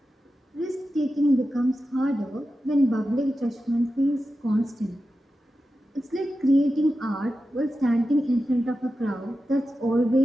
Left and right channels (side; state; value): both; normal; correlation 0.92